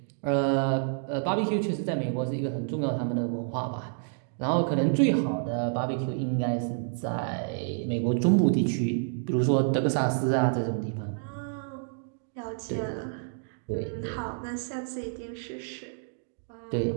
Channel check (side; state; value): left; silent; digital silence